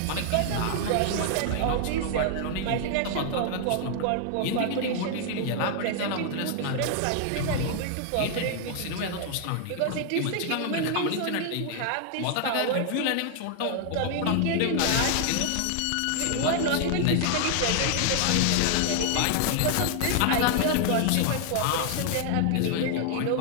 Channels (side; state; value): both; different; correlation 0.00